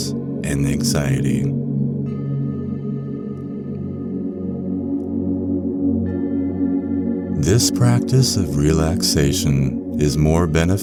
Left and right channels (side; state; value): both; identical; correlation 1.00